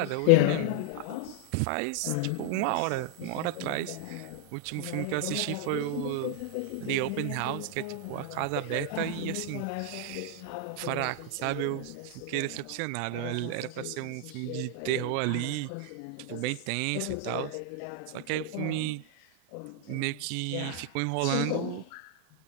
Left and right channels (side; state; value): both; different; correlation 0.00